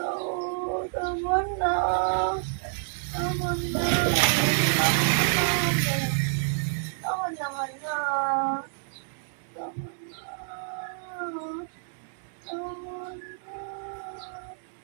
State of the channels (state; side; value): silent; left; digital silence